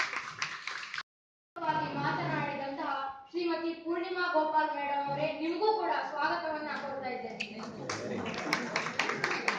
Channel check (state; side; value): identical; both; correlation 1.00